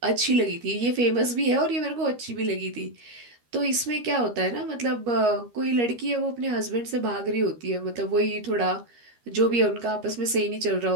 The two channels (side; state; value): left; late; 13 ms